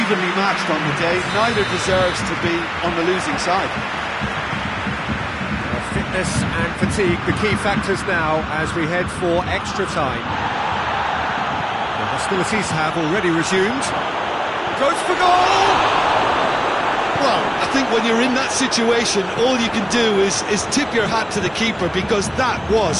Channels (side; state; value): both; identical; correlation 1.00